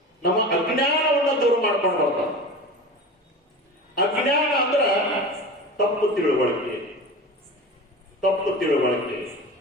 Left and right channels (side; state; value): both; normal; correlation 0.32